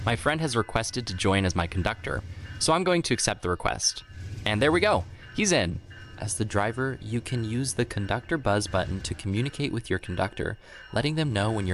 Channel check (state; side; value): identical; both; correlation 1.00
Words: My friend has requested to join as my conductor, so I'm going to accept the request. And there we go, he's in. As the driver, you can use the conductor buzz button to communicate with your conductor, letting them know when